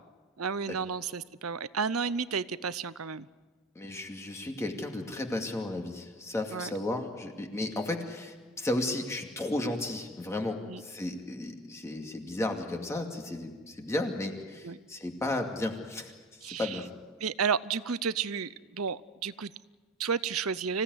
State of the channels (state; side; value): normal; both; correlation 0.35